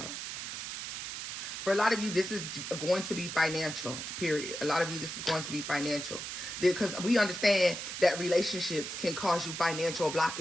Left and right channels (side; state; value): right; noise; hiss, 6 dB below the sound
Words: for a lot of you, this is going to be financial, period. A lot of you, this is going to be financial. Because we understand that relationships can cause you financial